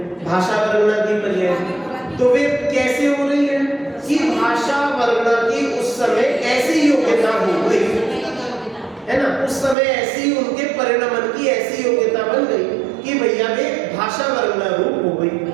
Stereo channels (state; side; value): drops out; left; at 9.8 s